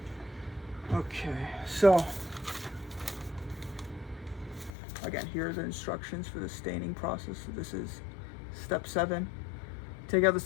Okay, so again, here are the instructions for the staining process. So this is step 7. Take out the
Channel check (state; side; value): drops out; right; at 4.8 s